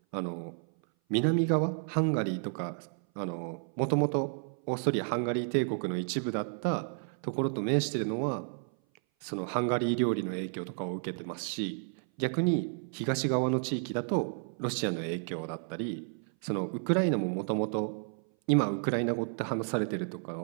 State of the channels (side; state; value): left; silent; 57 dB below the other